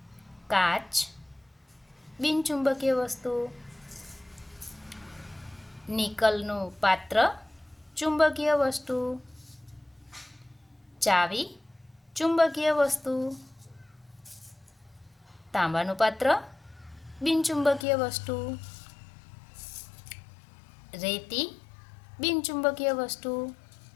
काच, बिनचुंबकीय वस्तु। निकलનું पात्र, चुंबकीय वस्तु। चावी, चुंबकीय वस्तु। तांबाનું पात्र, बिनचुंबकीय वस्तु। रेती, बिनचुंबकीय वस्तु।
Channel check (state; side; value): drops out; right; at 17.9 s